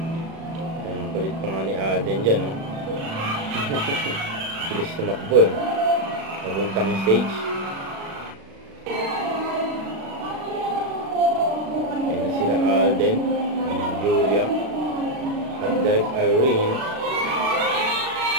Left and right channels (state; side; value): late; left; 36 ms